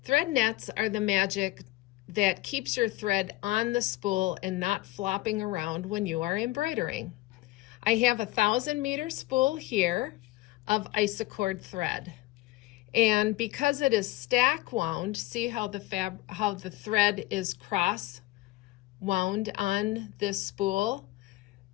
Thread nets are the magic that keeps your thread on the spool and not flopping around when you are embroidering. I have a 1,000-meter spool here of isocord thread. And because it is stack wound, see how the thread is cross wound on this spool?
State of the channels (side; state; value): right; quieter; 18.4 dB